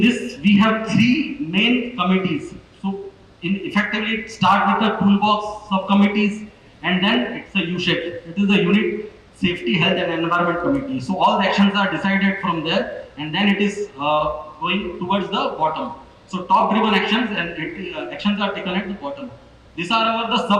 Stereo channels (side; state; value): both; identical; correlation 1.00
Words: this we have three main committees. So, effectively start with the toolbox subcommittees, and then it's a U-shape. It is a unit safety, health and environment committee. So all the actions are decided from there, and then it is going towards the bottom. So top driven actions and actions are taken at the bottom. These are the